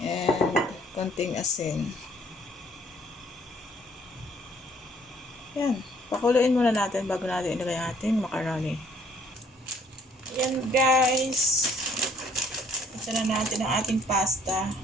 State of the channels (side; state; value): both; normal; correlation 0.61